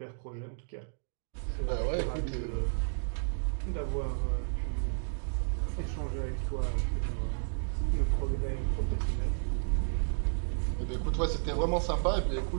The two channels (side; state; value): left; silent; digital silence